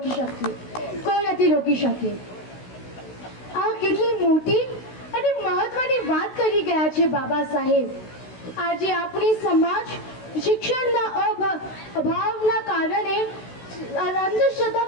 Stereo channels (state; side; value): late; right; 16 ms